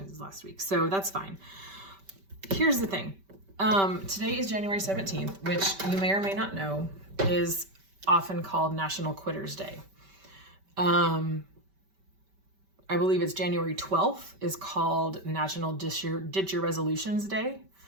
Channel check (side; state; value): left; late; 5.2 ms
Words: last week. So that's fine. Here's the thing. Today is January 17th, which you may or may not know is often called National Quitters Day. I believe it's January 12th is called National Ditch Your Resolutions Day,